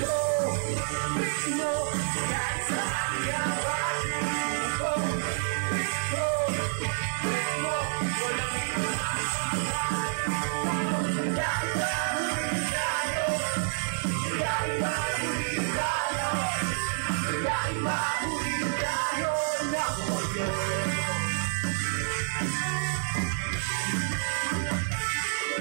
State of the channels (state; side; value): silent; left; 59 dB below the other